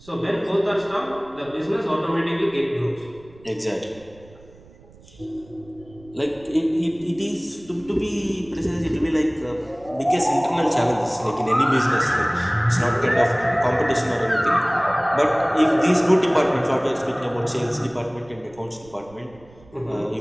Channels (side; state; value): right; noise; rumble, 24 dB below the sound